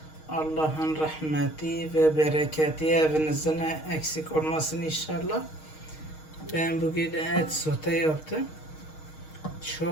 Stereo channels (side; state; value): right; late; 6.4 ms